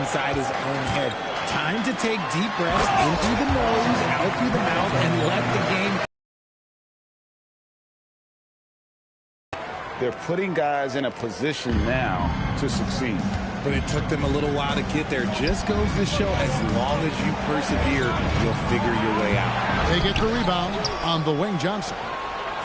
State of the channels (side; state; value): both; identical; correlation 1.00